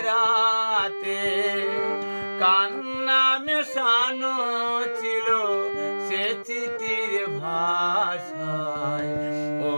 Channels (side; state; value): both; inverted; correlation -1.00